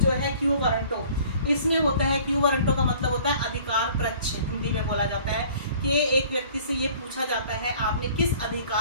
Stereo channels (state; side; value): inverted; both; correlation -0.51